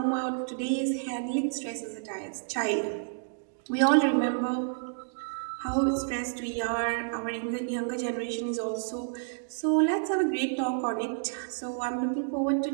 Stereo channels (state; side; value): silent; left; digital silence